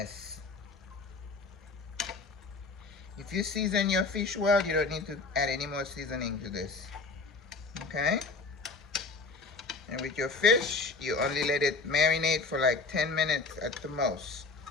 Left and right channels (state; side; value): quieter; right; 3.9 dB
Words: If you season your fish well, you don't need to add any more seasoning to this. Okay? And with your fish, you only let it marinate for like 10 minutes at the most.